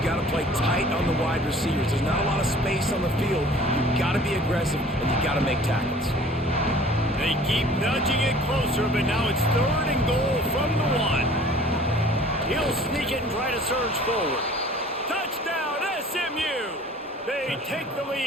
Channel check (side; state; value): both; normal; correlation 0.49